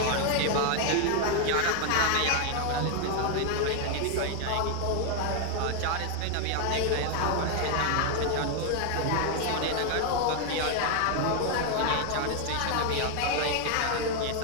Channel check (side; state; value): both; different; correlation 0.01